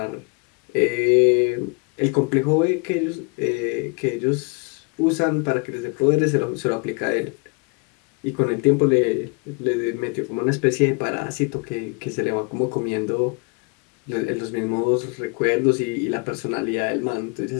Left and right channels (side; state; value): right; quieter; 33.3 dB